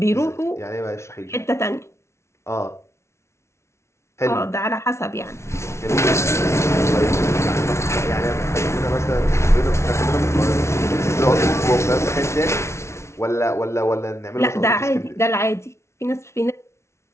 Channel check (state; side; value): late; right; 0.13 ms